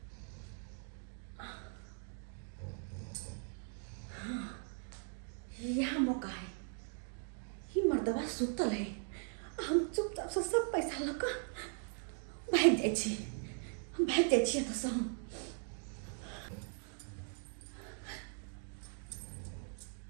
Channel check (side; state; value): left; silent; 51 dB below the other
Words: हाँ यहाँ मौका है। ही मर्दबा सुतल है हम चुपचाप से सब पैसा लगा भाग जाए छी हम भाग जाए छी तो सब